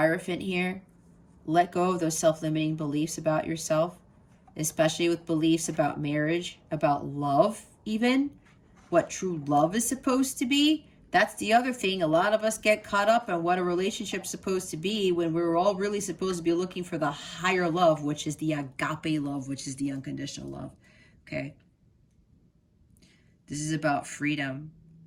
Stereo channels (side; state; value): both; identical; correlation 1.00